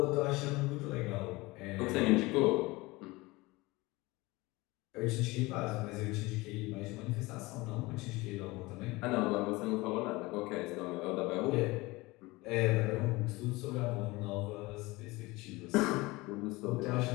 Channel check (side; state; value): right; quieter; 22.0 dB